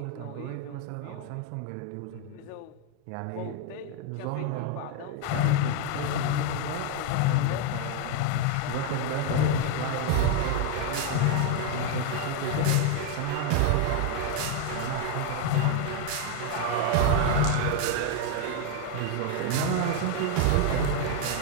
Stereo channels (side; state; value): both; different; correlation 0.01